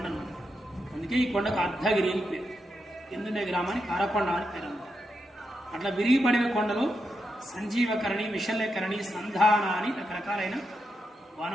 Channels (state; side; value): normal; both; correlation 0.85